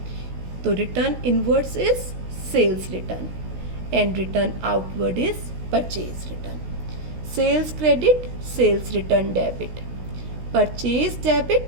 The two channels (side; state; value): left; late; 16 ms